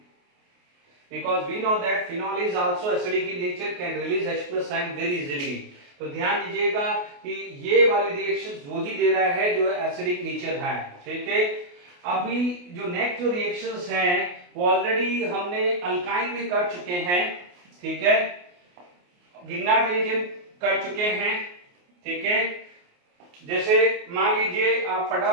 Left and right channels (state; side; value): late; left; 28 ms